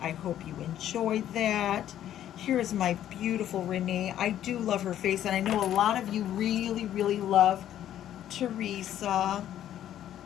I hope you enjoyed that. Here's my beautiful Renee. I do love her face, and I know a lot of you really, really love Teresa,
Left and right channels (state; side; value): quieter; right; 11.4 dB